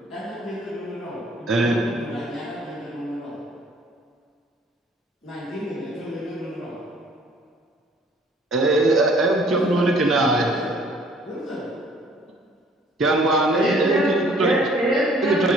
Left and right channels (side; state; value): both; normal; correlation 0.58